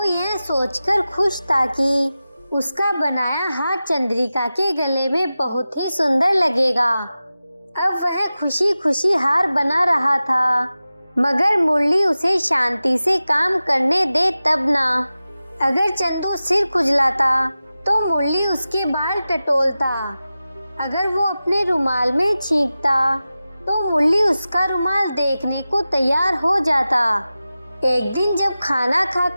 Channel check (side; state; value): both; inverted; correlation -0.95